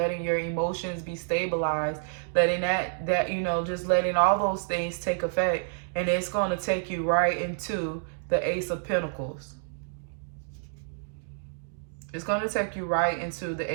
your emotions be stabilized, letting that just letting all those things take effect, and it's going to take you right into the Ace of Pentacles. It's going to take you right into the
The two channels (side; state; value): left; silent; digital silence